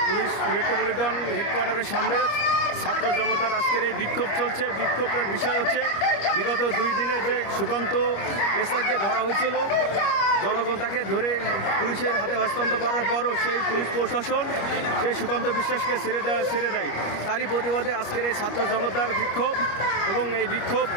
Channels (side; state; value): right; late; 25 ms